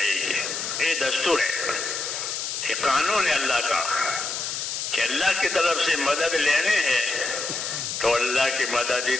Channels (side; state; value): left; noise; hiss, 3 dB below the sound